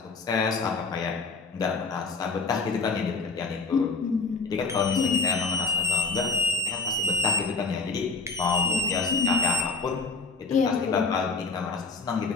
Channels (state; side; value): quieter; right; 4.1 dB